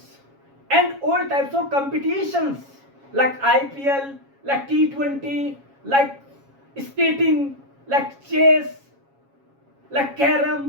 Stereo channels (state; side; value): late; left; 7.3 ms